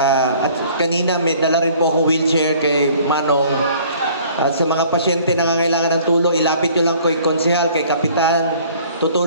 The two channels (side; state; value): both; inverted; correlation -0.54